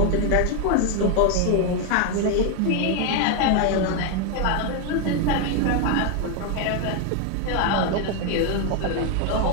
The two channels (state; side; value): different; both; correlation 0.01